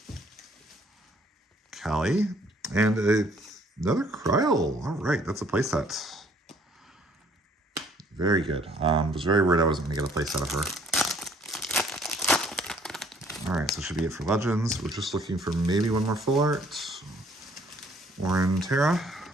Callie, and another Kryl. All right, that's a playset. Very good. Was very worried I wasn't going to get a playset of her. All right, so should be it for Legends. We're just looking for maybe one more full art. Orin Terra.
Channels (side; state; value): both; normal; correlation 0.60